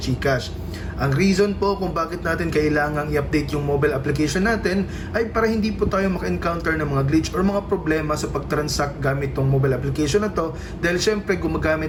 Ang reason po kung bakit natin kailangang i-update yung mobile application natin ay para hindi po tayo maka-encounter ng mga glitch or mga problema sa pag-transact gamit tong mobile application na to, dahil syempre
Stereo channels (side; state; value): both; identical; correlation 1.00